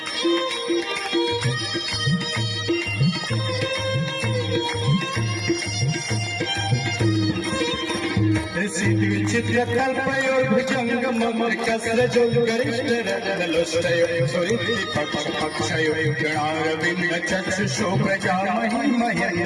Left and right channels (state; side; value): identical; both; correlation 1.00